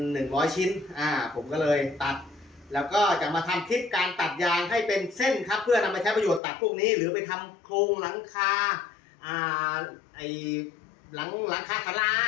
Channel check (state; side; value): drops out; right; at 6.4 s